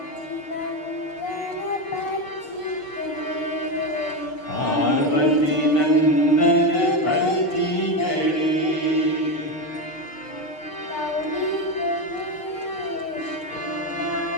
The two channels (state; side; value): late; right; 6.2 ms